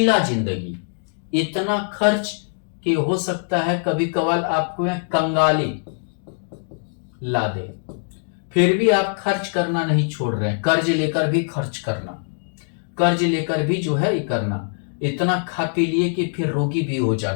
जिंदगी, इतना खर्च कि हो सकता है कभी कभार आपको यह कंगाली ला दे, फिर भी आप खर्च करना नहीं छोड़ रहे हैं, कर्ज लेकर भी खर्च करना, कर्ज लेकर भी जो है ये करना, इतना खा पी लिए कि फिर रोगी भी हो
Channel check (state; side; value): silent; right; 63 dB below the other